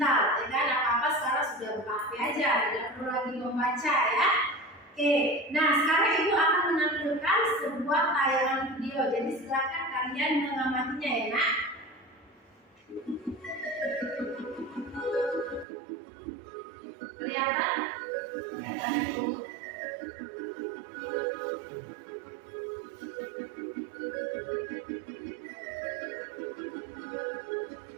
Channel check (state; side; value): drops out; left; at 15.7 s